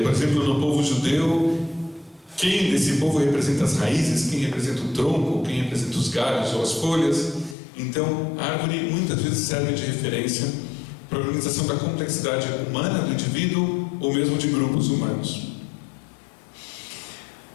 exemplo, no povo judeu, quem desse povo representa as raízes, quem representa o tronco, quem representa os galhos ou as folhas. Então, a árvore muitas vezes serve de referência para a organização da complexidade humana do indivíduo ou mesmo de grupos humanos.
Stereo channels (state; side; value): drops out; right; at 7.6 s